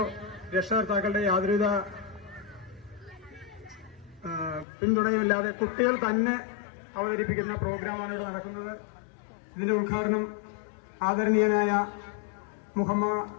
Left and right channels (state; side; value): drops out; right; at 4.7 s